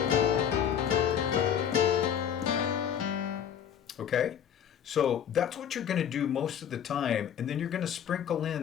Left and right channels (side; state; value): right; quieter; 8.8 dB